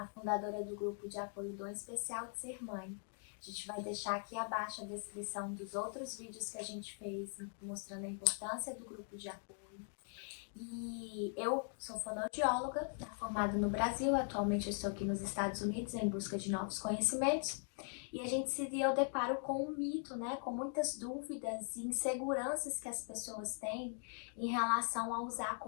fundadora do grupo de apoio Dom Especial de Ser Mãe. A gente vai deixar aqui abaixo a descrição dos outros vídeos que a gente fez mostrando a importância do grupo de apoio. E eu sou fonoaudióloga, formada no Brasil, atualmente eu estou aqui nos Estados Unidos em busca de novos conhecimentos. E a gente se deu deparo com um mito, né, com muitas dúvidas e inseguranças que as pessoas têm em relação a usar a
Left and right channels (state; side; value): silent; right; 51 dB below the other